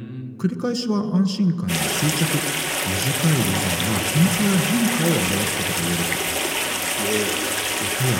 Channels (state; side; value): identical; both; correlation 1.00